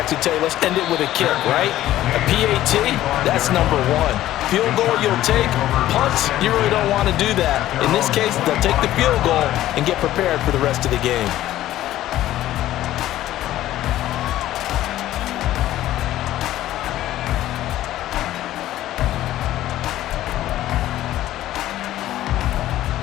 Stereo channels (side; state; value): right; quieter; 14.0 dB